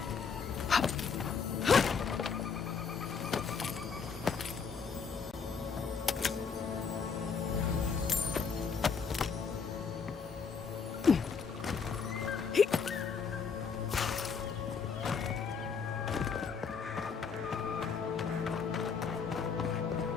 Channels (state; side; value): quieter; right; 5.8 dB